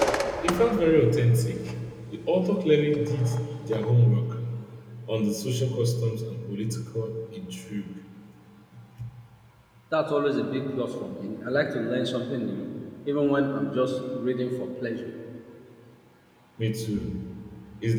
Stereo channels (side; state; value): both; identical; correlation 1.00